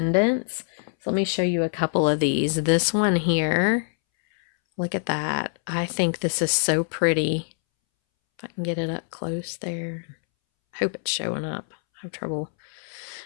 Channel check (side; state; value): right; silent; 62 dB below the other